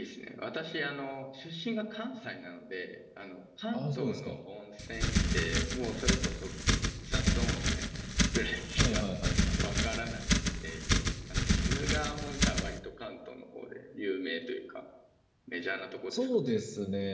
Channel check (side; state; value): both; identical; correlation 1.00